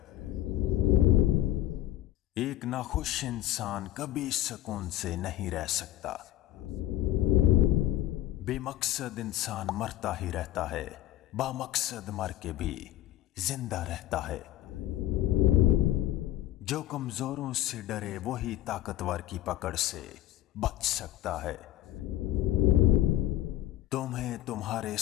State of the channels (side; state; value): right; quieter; 14.0 dB